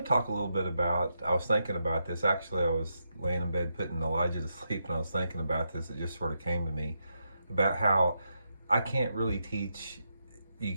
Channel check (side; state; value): both; inverted; correlation -0.83